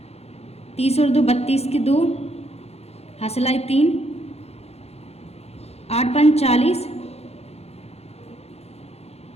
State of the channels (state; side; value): late; right; 0.30 ms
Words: 30 और 2 32 की 2, हासिलाई 3, 8 5 40,